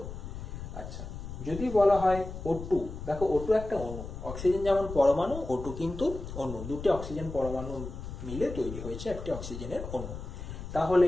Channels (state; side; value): noise; left; rumble, 9 dB below the sound